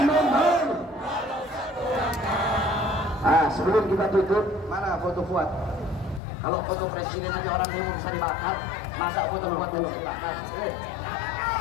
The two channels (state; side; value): drops out; right; at 6.2 s